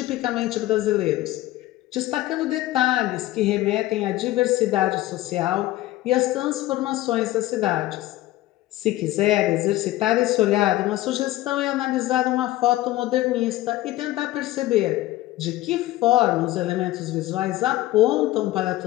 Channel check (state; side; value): quieter; right; 16.4 dB